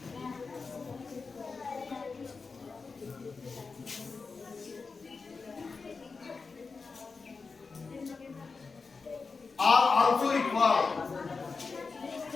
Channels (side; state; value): right; quieter; 4.5 dB